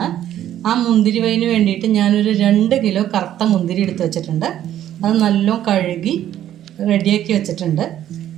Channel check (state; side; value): quieter; left; 11.6 dB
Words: ആ മുന്തിരി വൈന് വേണ്ടിയിട്ട് ഞാനൊരു 2 കിലോ കറുത്ത മുന്തിരി എടുത്ത് വെച്ചിട്ടുണ്ട്. അത് നല്ലോണം കഴുകി റെഡിയാക്കി വെച്ചിട്ടുണ്ട്.